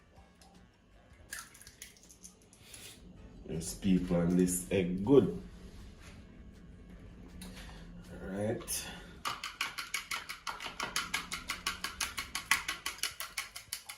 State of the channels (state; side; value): identical; both; correlation 1.00